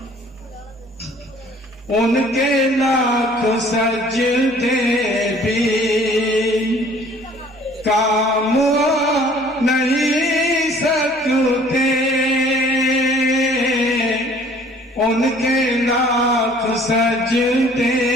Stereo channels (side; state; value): both; normal; correlation 0.54